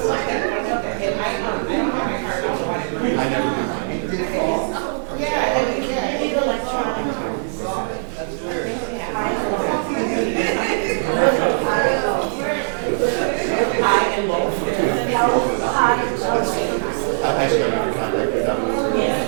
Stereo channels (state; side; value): silent; left; digital silence